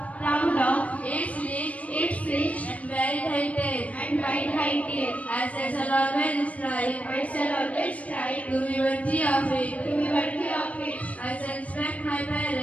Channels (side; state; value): right; late; 0.067 ms